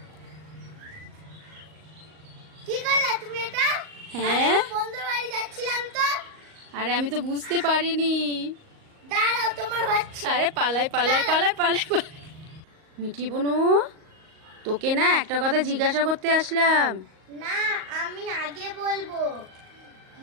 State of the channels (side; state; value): left; late; 38 ms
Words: কি করলা তুমি এটা? হ্যাঁ, আমি বন্ধুর বাড়ি যাচ্ছিলাম তো। আরে আমি তো বুঝতে পারিনি। দাঁড়াও, তোমার হচ্ছে। আরে পালাই পালাই পালাই পালাই পালাই। মিঠি বোনু, তোকে না একটা কথা জিজ্ঞাসা করতে আসলাম। না, আমি আগে বলবো।